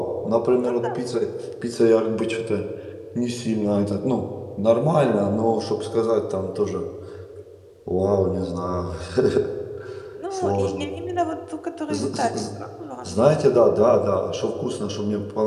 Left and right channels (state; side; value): identical; both; correlation 1.00